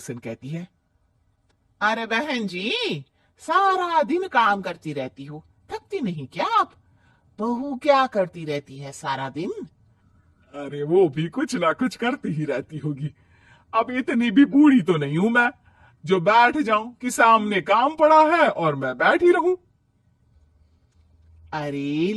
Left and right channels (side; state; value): both; identical; correlation 1.00